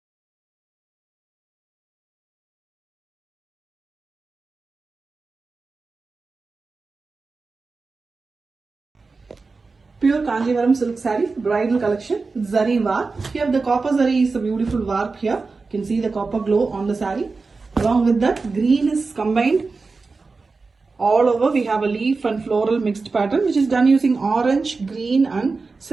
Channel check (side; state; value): left; quieter; 4.1 dB